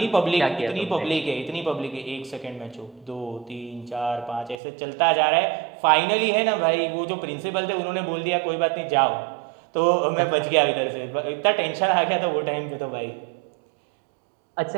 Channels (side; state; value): left; drops out; at 4.5 s